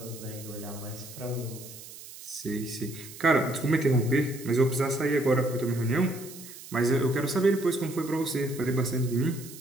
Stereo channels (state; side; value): noise; right; hiss, 15 dB below the sound